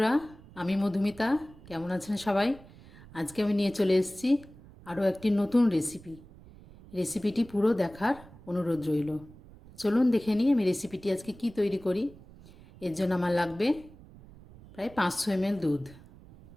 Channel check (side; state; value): right; noise; rumble, 21 dB below the sound